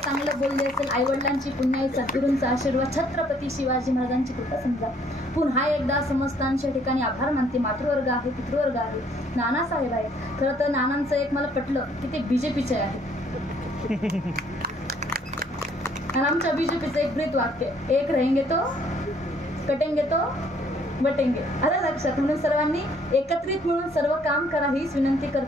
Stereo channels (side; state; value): both; normal; correlation 0.63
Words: बोलले असेल आईवडिलांची पुण्याई, सद्गुरूंचा आशीर्वाद, छत्रपती शिवाजी महाराजांची कृपा समजा. पुन्हा एकदा समस्तांच्या ठिकाणी आभार मानते. मातृवर्ग आहे, पितृवर्ग आहे, नानासाहेब आहे. खरं तर नानांचं एक मला पटलं की ते बीजेपीचे आहे. आणि आमच्या बीजेपीचं एक ब्रीत वाक्य, एक रहेंगे तो कटेंगे तो बटेंगे. आलं लक्षात. म्हणून सर्वांनी एकत्रित म्हणून सर्व काम करा हीच विनंती